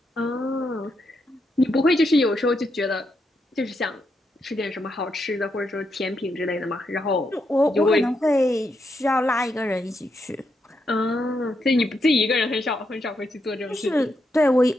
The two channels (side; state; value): both; normal; correlation 0.82